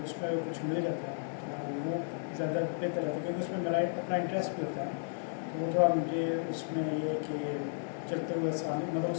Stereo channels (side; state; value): right; silent; 55 dB below the other